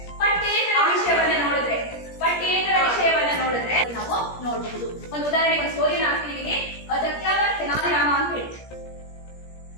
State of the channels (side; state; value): right; late; 17 ms